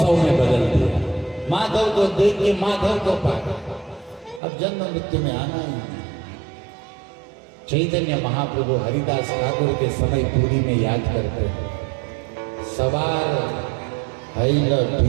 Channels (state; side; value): drops out; left; at 4.4 s